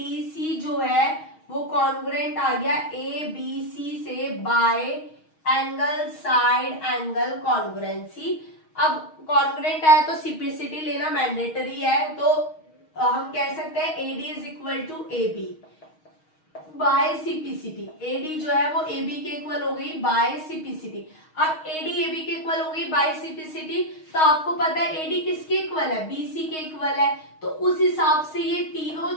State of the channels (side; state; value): right; late; 6.4 ms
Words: जो है वो कॉन्ग्रुएंट आ गया ABC से bye angle side angle congruency. अब कॉन्ग्रुएंट आया तो सिप्लिसिटी लेना मैंडेटरी है, तो हम कह सकते हैं AD is equal to AB by simplicity. AD जो है वो AB के इक्वल हो गई बाय सिप्लिसिटी। अब AD AB के इक्वल हो गई बाय सिप्लिसिटी, तो आपको पता है AD किसके इक्वल है, BC के इक्वल है, तो उस हिसाब से ये तीनों